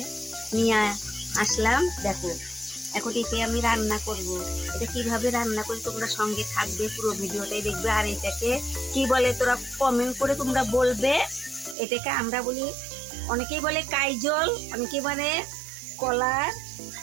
নিয়ে আসলাম। দেখো এখন একে আমি রান্না করব। এটা কিভাবে রান্না করি তোমরা সঙ্গে থাকবে, পুরো ভিডিওটাই দেখবে। আর এটাকে কি বলে তোরা কমেন্ট করে তোমরা বলবে। এটাকে আমরা বলি, অনেকেই বলে কাইজল, অনেকেই বলে কলার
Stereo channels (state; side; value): drops out; left; at 11.8 s